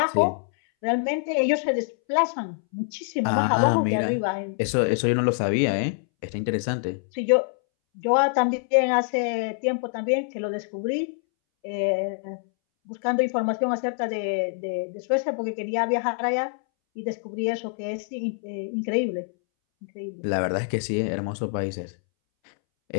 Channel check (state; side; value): silent; right; 61 dB below the other